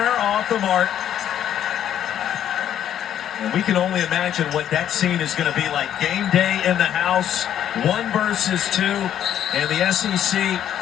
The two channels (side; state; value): right; quieter; 10.5 dB